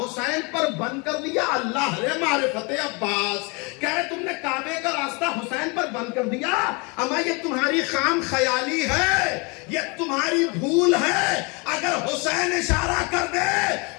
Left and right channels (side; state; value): right; quieter; 30.0 dB